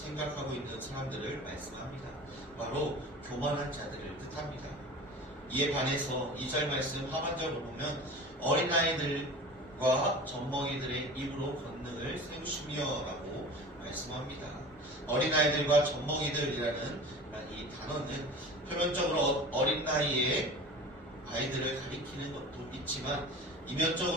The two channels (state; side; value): normal; both; correlation 0.38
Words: 있는 사람들을 말씀합니다. 바로 교만한 자들을 뜻합니다. 이에 반해서 2절 말씀 하반절을 보면 어린아이들과 젖먹이들의 입으로 권능을 세우시며 라고 말씀합니다. 어린아이들과 젖먹이들이라는 이 단어는 표면적으로 어린 나이에 아이들을 가리키는 것도 있지만